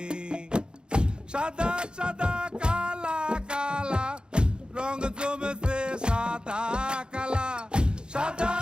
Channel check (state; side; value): late; left; 0.050 ms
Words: সাদা সাদা কালা কালা রং জমেছে সাদা কালা, সাদা